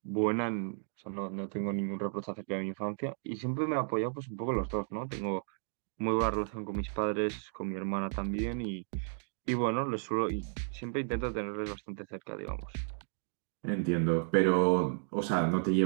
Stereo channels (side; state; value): left; silent; digital silence